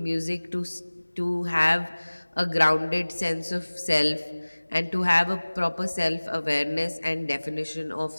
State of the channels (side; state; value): both; inverted; correlation -1.00